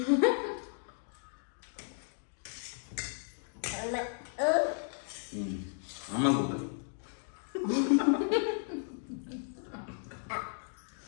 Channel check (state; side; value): silent; right; 55 dB below the other